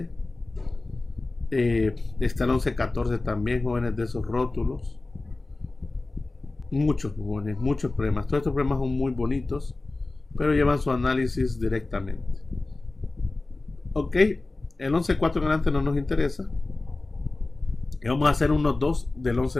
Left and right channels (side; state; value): right; quieter; 3.2 dB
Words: Está el 11.14 también, jóvenes, de esos rótulos. Muchos jóvenes, muchos problemas. Todos estos problemas son muy bonitos, pero llevan su análisis directamente. Ok, el 11.4 en adelante no nos interesa. Y vamos a hacer unos 2 del